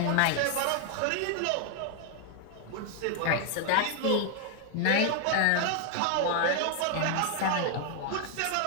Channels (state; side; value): different; both; correlation 0.00